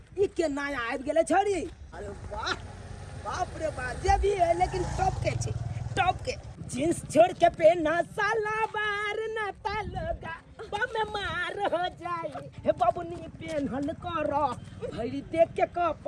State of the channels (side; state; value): both; identical; correlation 1.00